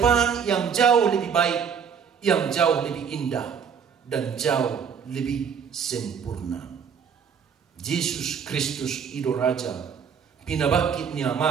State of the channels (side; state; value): left; quieter; 7.1 dB